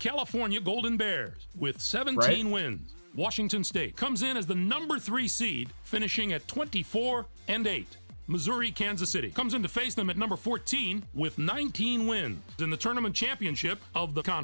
Golden Bears, with 17 wins. Washington State comes in as the #3 seed, finishing at 24-8. Missouri Kansas City comes in to face them at #14 with 19 wins in the tournament championship of the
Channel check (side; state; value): both; inverted; correlation -1.00